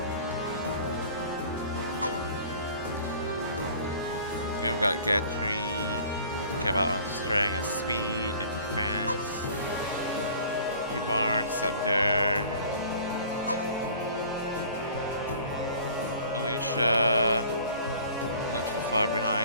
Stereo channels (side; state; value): both; inverted; correlation -0.47